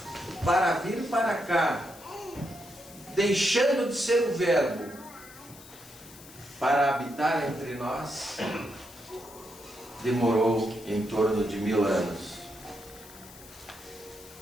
para vir para cá, deixando de ser o Verbo para habitar entre nós, demorou em torno de 1000 anos.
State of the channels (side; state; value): left; noise; hiss, 19 dB below the sound